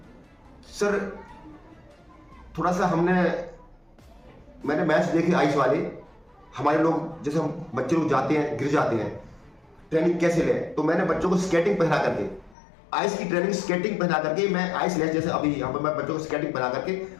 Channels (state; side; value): drops out; right; at 12.6 s